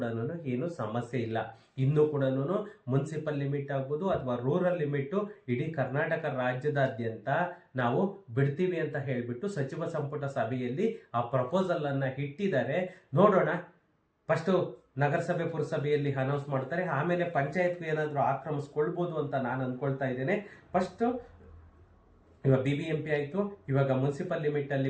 ಏನು ಸಮಸ್ಯೆ ಇಲ್ಲ. ಇನ್ನೂ ಕೂಡ ಮುನ್ಸಿಪಲ್ ಲಿಮಿಟ್ ಆಗ್ಬೋದು ಅಥವಾ ರೂರಲ್ ಲಿಮಿಟು ಇಡೀ ಕರ್ನಾಟಕ ರಾಜ್ಯದಾದ್ಯಂತ ನಾವು ಬಿಡ್ತೀವಿ ಅಂತ ಹೇಳಿಬಿಟ್ಟು ಸಚಿವ ಸಂಪುಟ ಸಭೆಯಲ್ಲಿ ಆ ಪ್ರಪೋಸಲನ್ನು ಇಟ್ಟಿದ್ದಾರೆ. ನೋಡೋಣ. ಫಸ್ಟು ನಗರಸಭೆ ಪುರಸಭೆಯಲ್ಲಿ ಅನೌನ್ಸ್ ಮಾಡ್ತಾರೆ, ಆಮೇಲೆ ಪಂಚಾಯತ್ಗೂ ಏನಾದರೂ ಆಕ್ರಮಿಸ್ಕೊಳ್ಬೋದು ಅಂತ ನಾನು ಅಂದ್ಕೊಳ್ತಾ ಇದ್ದೇನೆ. ಫಸ್ಟು ಇವಾಗ BBMP ಆಯಿತು, ಇವಾಗ ಮುನ್ಸಿಪಲ್ ಲಿಮಿಟಲ್ಲಿ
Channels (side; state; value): both; identical; correlation 1.00